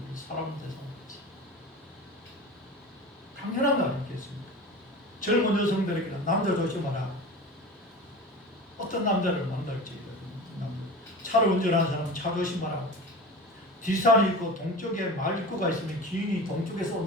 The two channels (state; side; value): normal; both; correlation 0.33